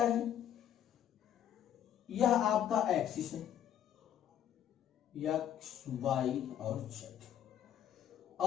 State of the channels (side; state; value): right; quieter; 10.3 dB